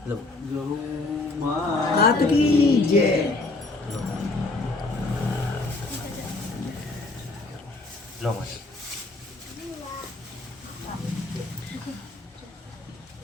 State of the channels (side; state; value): right; quieter; 3.2 dB